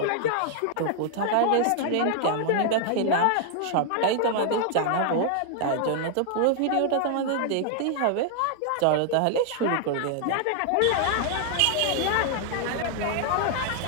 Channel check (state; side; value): different; both; correlation 0.00